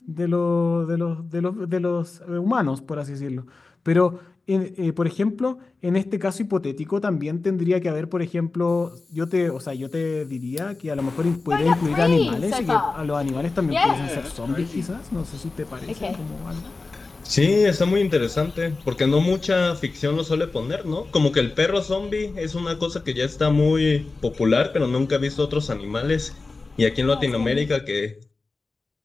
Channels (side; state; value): right; quieter; 3.7 dB